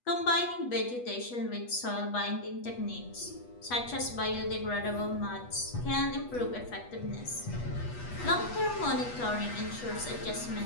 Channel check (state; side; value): late; right; 8.2 ms